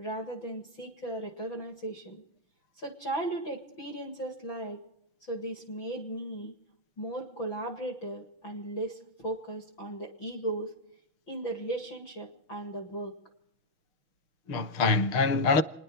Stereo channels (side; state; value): right; late; 6.1 ms